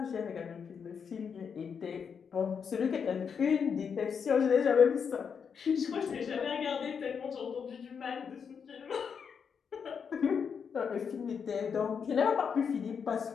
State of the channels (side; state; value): right; quieter; 6.6 dB